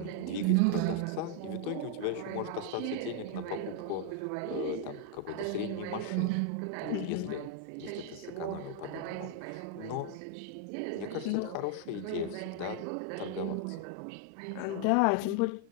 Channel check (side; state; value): both; different; correlation 0.00